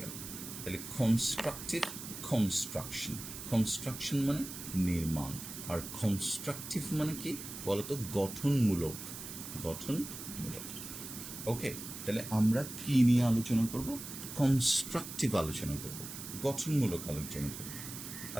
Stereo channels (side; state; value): right; noise; hiss, 10 dB below the sound